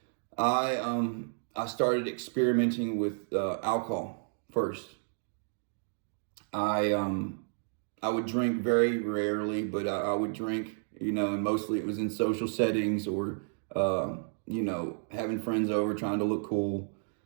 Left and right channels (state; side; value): silent; left; digital silence